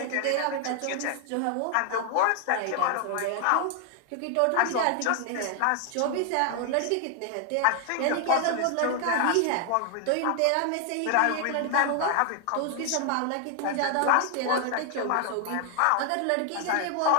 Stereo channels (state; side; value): different; both; correlation 0.00